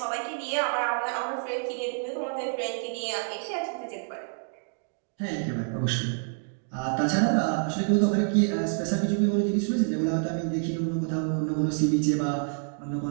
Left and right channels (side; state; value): left; silent; 59 dB below the other